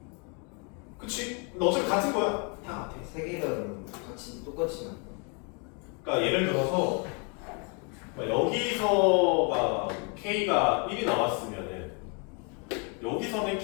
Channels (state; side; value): quieter; right; 35.4 dB